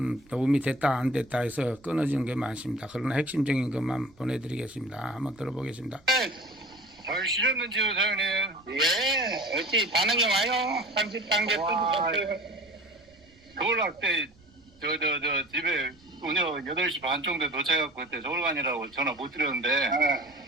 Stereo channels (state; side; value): noise; right; rumble, 28 dB below the sound